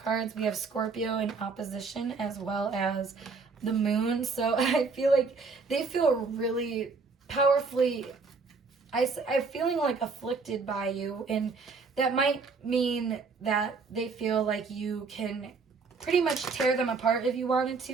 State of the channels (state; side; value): quieter; left; 4.5 dB